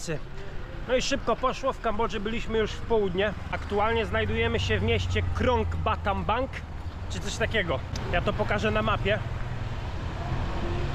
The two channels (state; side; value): identical; both; correlation 1.00